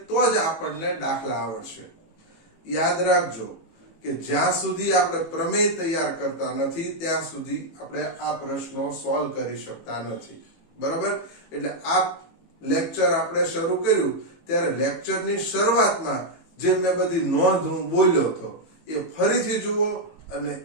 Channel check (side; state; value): right; late; 18 ms